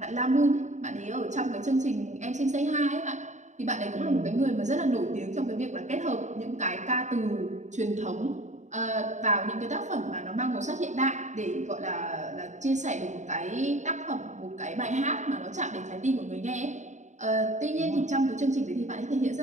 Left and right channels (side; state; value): left; late; 0.34 ms